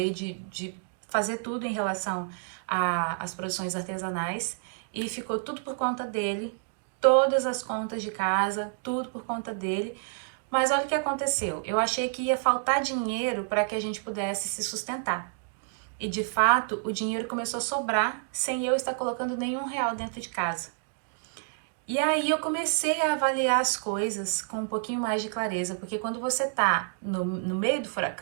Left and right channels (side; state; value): left; silent; digital silence